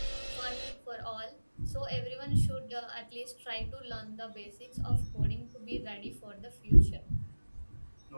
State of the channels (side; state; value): both; inverted; correlation -1.00